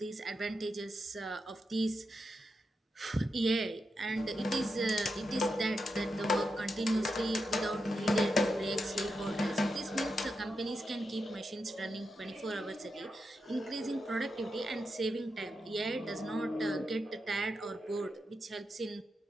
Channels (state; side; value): normal; both; correlation 0.86